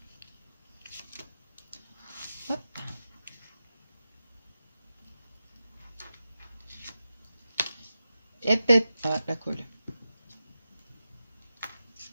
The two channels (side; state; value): both; inverted; correlation -0.92